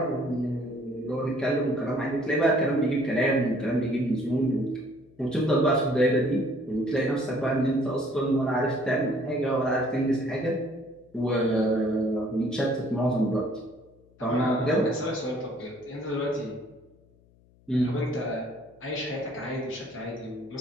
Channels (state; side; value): noise; left; hum, 30 dB below the sound